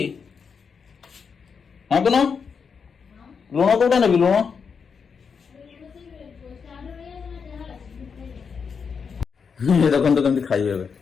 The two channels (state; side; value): quieter; right; 6.0 dB